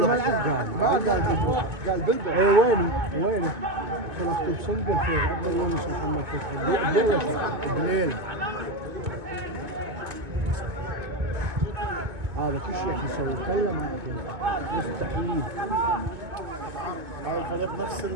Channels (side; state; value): left; late; 2.2 ms